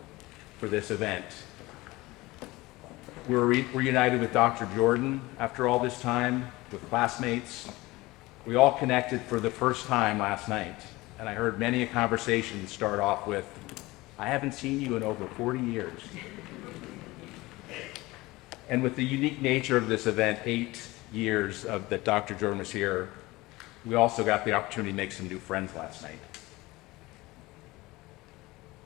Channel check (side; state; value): right; quieter; 20.5 dB